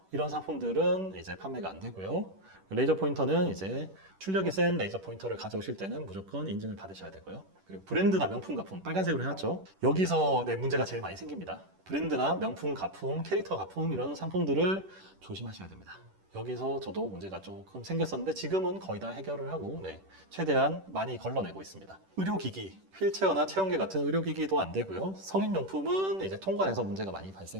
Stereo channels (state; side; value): late; left; 10 ms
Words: 이런 상품들은 이제 판매가 안 되고요. 레이저 포인터는 이제 출력이 센 레이저 포인터를 가져오실 때는 무조건 인증을 받으셔야 되고요. 그리고 브랜드나 명품 가품, 빨간색으로 해놨죠. 여기서 문제가 제일 많이 생깁니다. 브랜드나 명품 가품, 캐릭터 가품, 이런 상품들을 조심하셔야 됩니다. 여기서 저도 문제가 조금 생겼었는데 지금은 거의 다 해결을 하고 최대한 많이 걸러내고 있습니다. 의료기기, 휠체어나 체온계 같은 의료기기도 안 되고요. 성인용품은 이제 통관에서 문제가 많이